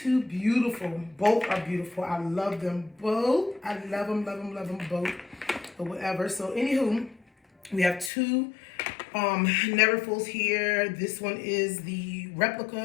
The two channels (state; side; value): drops out; right; at 8.1 s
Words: two beautiful, both are beautiful. I love them both. I love them both, or whatever. So anywho, we have two Neverfulls here. This one is the